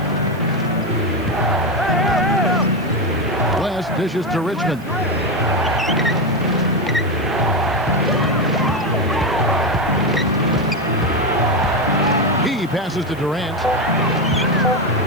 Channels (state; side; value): noise; right; hiss, 25 dB below the sound